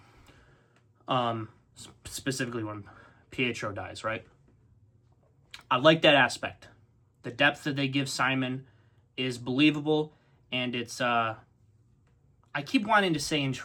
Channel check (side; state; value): both; identical; correlation 1.00